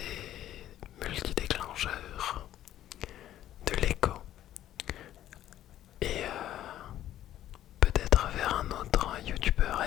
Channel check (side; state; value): right; quieter; 12.5 dB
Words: multidéclencheurs, de l'écho, et peut-être vers un autre youtubeur